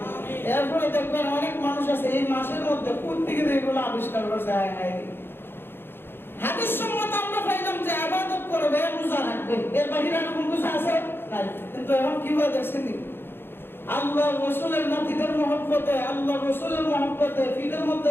এরপরে দেখবেন অনেক মানুষ আছে এই মাসের মধ্যে কোথা থেকে এগুলো আবিষ্কার করেছে। হাদিস সম্মত আমরা পাইলাম যে ইবাদত করবে, রোজা রাখবে, এর বাইরে আর কোনো কিছু আছে নাই। কিন্তু এখন কি হয় দেখছেন, আল্লাহর রাসূলের নাতিদের মহব্বতে, আল্লাহর রাসূলের মহব্বতে ফিটের মধ্যে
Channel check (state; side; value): late; right; 0.10 ms